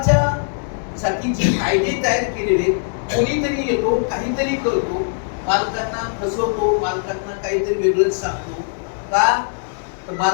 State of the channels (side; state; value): right; silent; 63 dB below the other